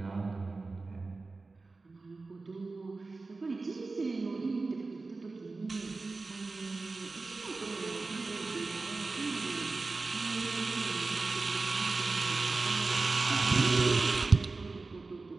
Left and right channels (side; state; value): left; quieter; 3.7 dB